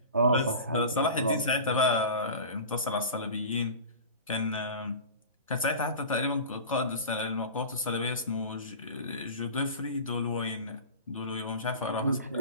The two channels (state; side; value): inverted; both; correlation -0.34